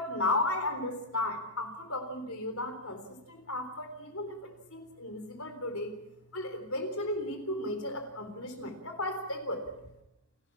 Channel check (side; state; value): both; normal; correlation -0.12